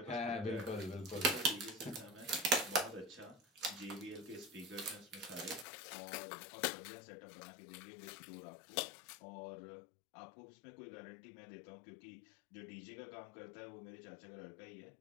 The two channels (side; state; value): right; drops out; at 5.7 s